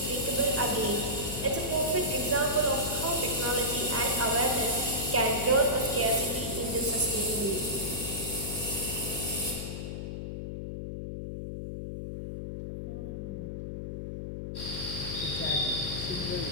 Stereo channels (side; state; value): left; noise; hum, 6 dB below the sound